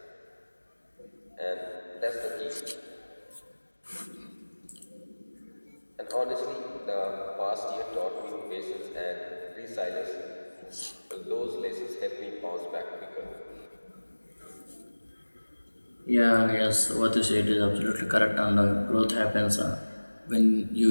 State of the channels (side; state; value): both; inverted; correlation -1.00